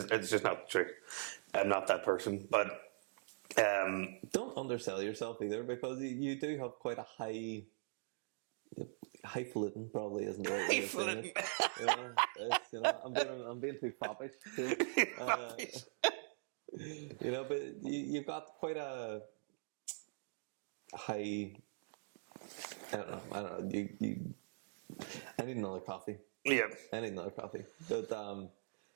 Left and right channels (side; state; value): left; silent; digital silence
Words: it's just not the truth. I'm not that person, but don't undersell yourself either, because you do have quite a highfalutin, probably isn't the right way of saying it. I'm being too foppish here. But you've got quite a high. I don't know. I need another coffee. Yeah, I need another coffee. But